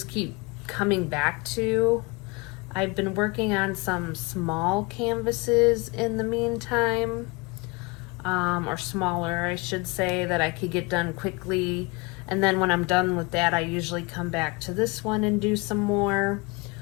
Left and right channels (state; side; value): quieter; right; 26.8 dB